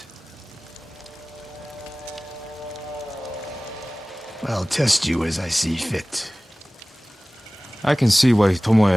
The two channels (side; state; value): both; normal; correlation 0.98